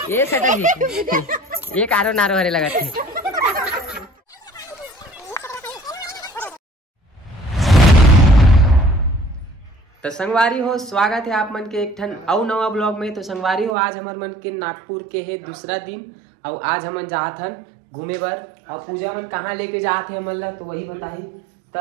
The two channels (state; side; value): drops out; left; at 13.8 s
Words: ये सटा जी ये कारो नारो हरे लगा थे। तो संगवारी हो स्वागत है आप मन के एक ठन अउ नवा ब्लॉग में। तो संगवारी हो आज हमार मन के नागपुर के है दूसरा दिन और आज हमन जात हन घूमे बर और पूजा मन कहाँ लेके जात है हमन ला तो वही बताही। तो